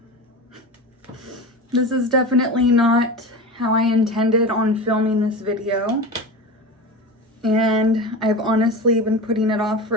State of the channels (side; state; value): both; normal; correlation 0.27